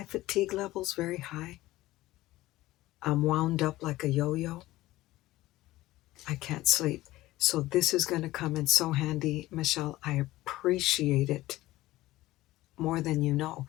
fatigue level's very high, I'm wound up like a yo-yo. I can't sleep. So this is going to come in so handy, Michelle. I appreciate it more than you know,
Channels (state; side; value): quieter; right; 17.2 dB